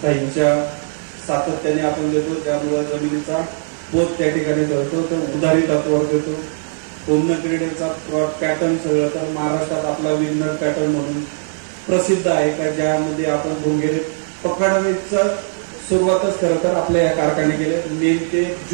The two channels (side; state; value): left; silent; digital silence